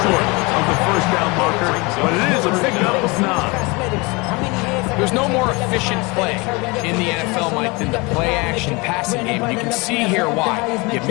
short of the first down marker, but it is a pickup of 9. There's no more efficient play in the NFL, Mike, than the play-action passing game. You can see here why. You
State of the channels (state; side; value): quieter; right; 26.4 dB